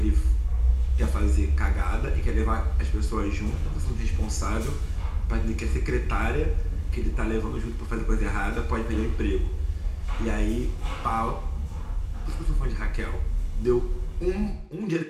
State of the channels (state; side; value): identical; both; correlation 1.00